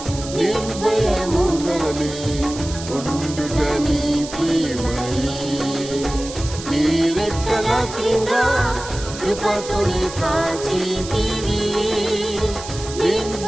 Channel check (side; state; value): right; noise; hiss, 12 dB below the sound